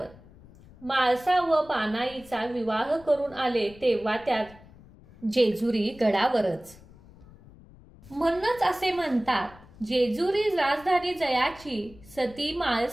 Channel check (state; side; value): noise; left; rumble, 22 dB below the sound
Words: माळसा व पानाईचा विवाह करून आले तेव्हा त्यात जेजुरी गडावरच. म्हणूनच असे म्हणतात, जेजुरी राजधानी जयाची, सती